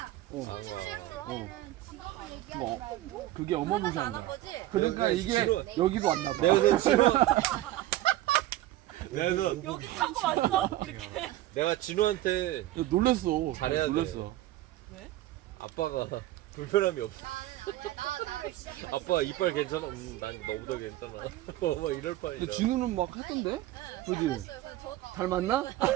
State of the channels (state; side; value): quieter; left; 15.5 dB